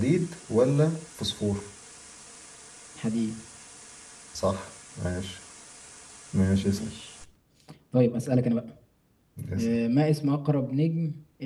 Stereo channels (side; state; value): both; identical; correlation 1.00